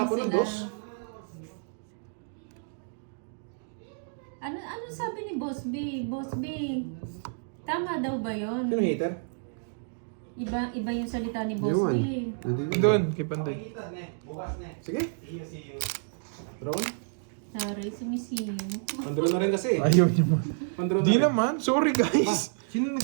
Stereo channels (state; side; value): silent; left; digital silence